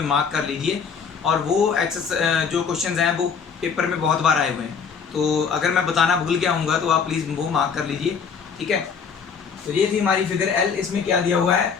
मार्क कर लीजिए, और वो एक्सरसाइज जो क्वेश्चंस हैं वो पेपर में बहुत बार आए हुए हैं, तो अगर मैं बताना भूल गया हूँगा तो आप प्लीज़ वो मार्क कर लीजिए। ठीक है, तो ये थी हमारी फिगर एल। इसमें क्या दिया हुआ है,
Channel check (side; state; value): right; quieter; 6.2 dB